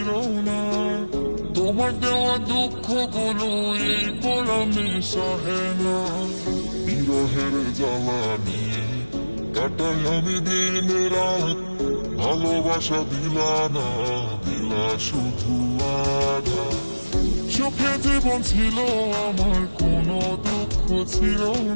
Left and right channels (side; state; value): both; inverted; correlation -1.00